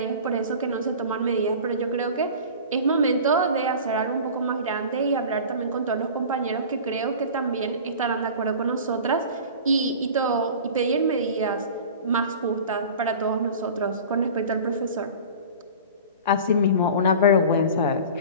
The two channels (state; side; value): inverted; both; correlation -0.37